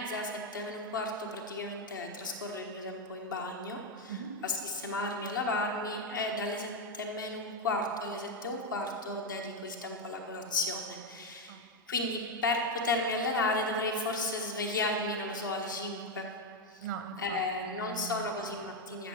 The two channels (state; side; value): normal; both; correlation 0.05